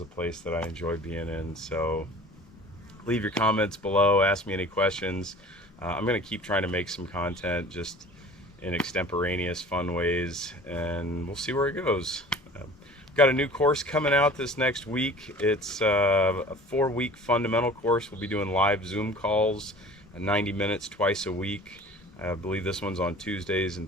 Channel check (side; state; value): both; normal; correlation 0.44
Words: place that I enjoy being in. So leave your comments below, ask me any questions. I'm going to keep trying to make some content just in extemporaneous fun ways, and we'll see where it goes. Got a new course coming out this next week. It's a 4-week fundamental course. We'll be doing live Zoom calls, 90 minutes twice a week. I believe this one's on Tuesdays